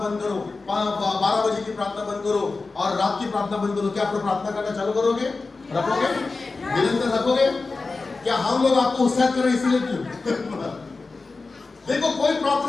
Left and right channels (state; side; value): quieter; right; 3.9 dB